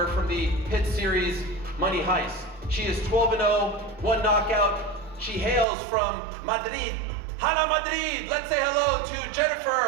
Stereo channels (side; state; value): left; drops out; at 5.7 s